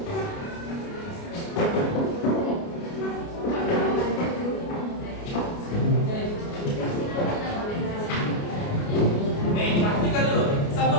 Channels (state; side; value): late; right; 29 ms